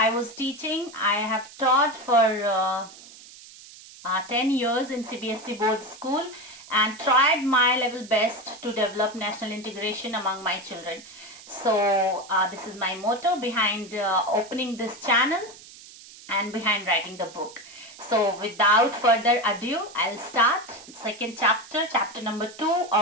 was teaching. I have taught for 10 years in CBSE board school and tried my level best to develop national integration among my children. So this is my motto behind opening this channel and behind writing the book. So without further ado, I'll start second chapter, chapter number 2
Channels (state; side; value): noise; right; hiss, 19 dB below the sound